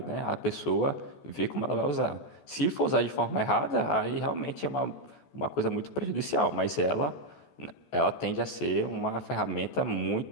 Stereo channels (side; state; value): right; late; 14 ms